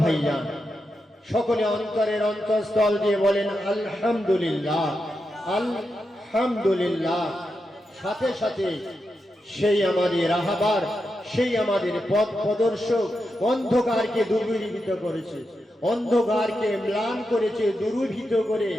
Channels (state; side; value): normal; both; correlation 0.87